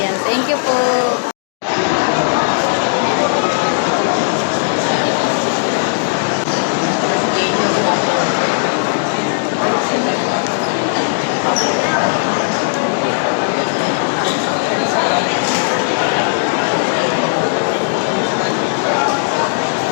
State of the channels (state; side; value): silent; right; digital silence